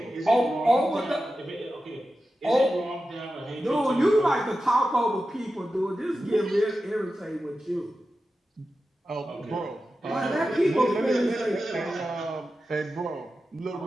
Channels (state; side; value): normal; both; correlation 0.92